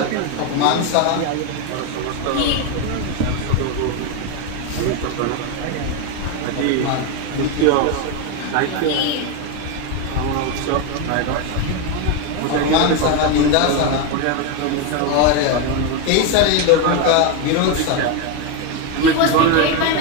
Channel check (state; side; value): different; both; correlation 0.02